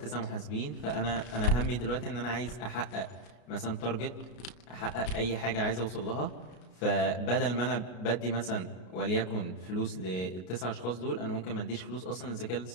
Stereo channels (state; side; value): late; right; 33 ms